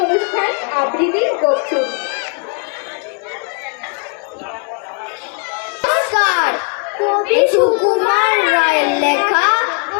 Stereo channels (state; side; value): quieter; right; 38.3 dB